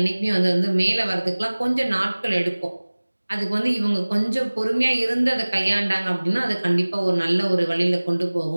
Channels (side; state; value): both; inverted; correlation -1.00